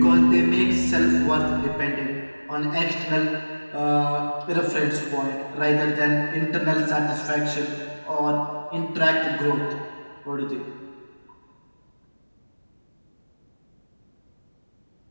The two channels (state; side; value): inverted; both; correlation -1.00